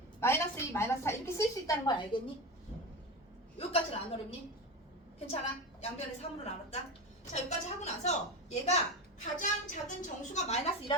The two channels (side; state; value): both; normal; correlation 0.23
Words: 마이너스 2, 마이너스 4 이렇게 쓸 수 있다는 걸 알겠니? 여기까지는 안 어렵니? 괜찮아? 양변을 3으로 나눴다. 자, 여기까지 하고 나서 얘가 가장 작은 정수가 마이너스